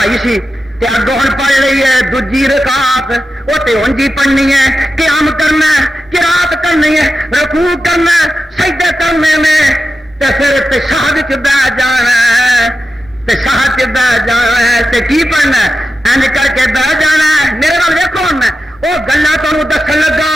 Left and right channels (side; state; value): both; normal; correlation 0.91